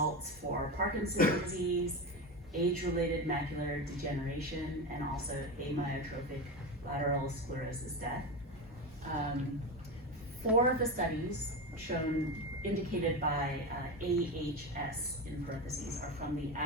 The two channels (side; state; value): both; normal; correlation 0.20